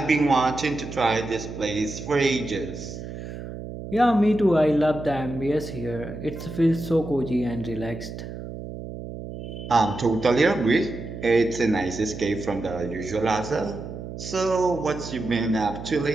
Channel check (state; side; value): noise; right; hum, 10 dB below the sound